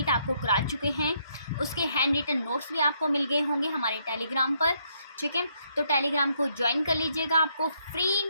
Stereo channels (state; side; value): inverted; both; correlation -0.73